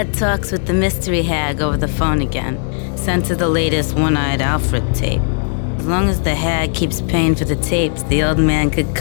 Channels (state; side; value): silent; right; 62 dB below the other